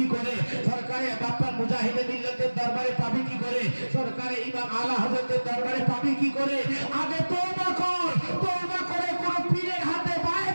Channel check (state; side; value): inverted; both; correlation -1.00